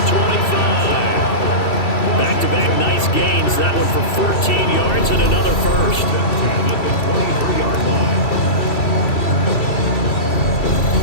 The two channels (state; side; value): late; right; 2.7 ms